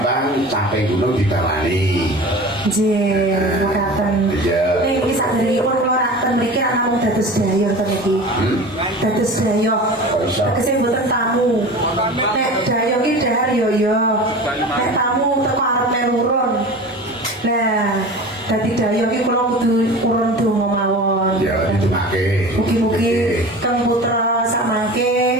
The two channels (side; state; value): both; normal; correlation 0.35